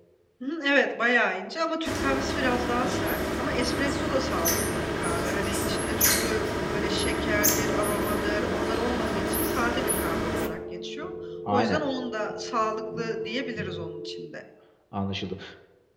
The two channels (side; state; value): both; identical; correlation 1.00